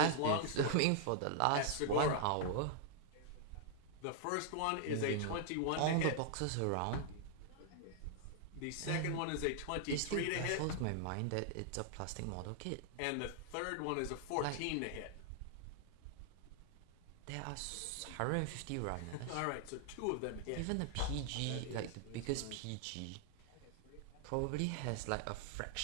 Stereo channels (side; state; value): both; different; correlation 0.00